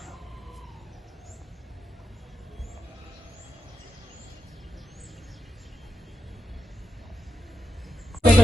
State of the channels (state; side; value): normal; both; correlation 0.87